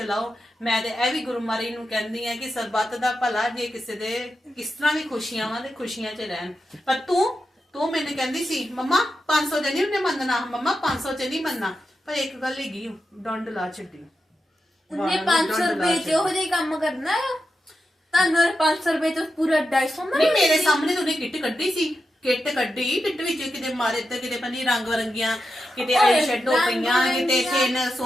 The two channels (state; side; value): normal; both; correlation 0.89